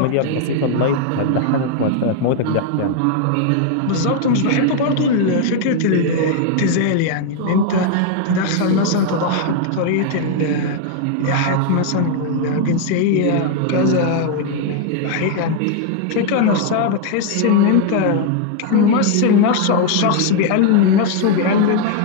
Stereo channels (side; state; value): both; different; correlation 0.00